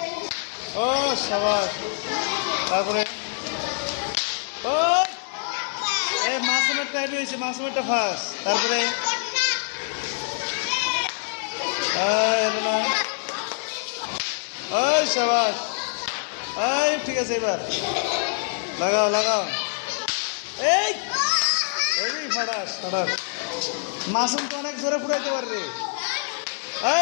ও সাবাস। তারপরে ও এ মাসুমের টাইপ হয়েছে, মাসুমেরটা ফার্স্ট। তারপরে ওই সাবাস। এই ঠিক আছে, এবার লাগাও লাগাও। এই ফাটাস ফাটাস। মাসুম তো অনেক জোরে ফুটাইতে পারে রে।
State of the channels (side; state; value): right; silent; digital silence